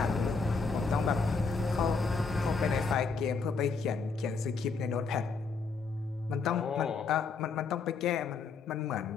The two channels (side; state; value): right; quieter; 4.7 dB